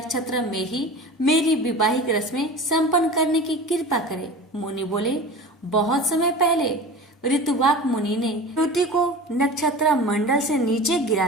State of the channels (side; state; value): both; normal; correlation 0.35